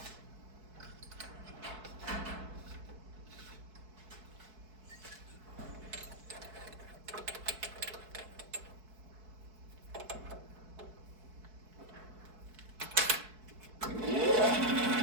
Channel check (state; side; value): late; left; 4.6 ms